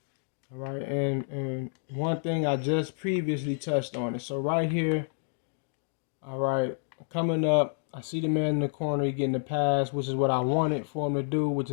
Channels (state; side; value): silent; right; digital silence